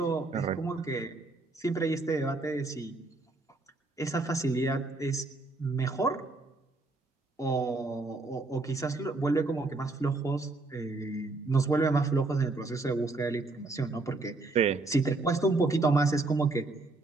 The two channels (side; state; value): left; quieter; 3.3 dB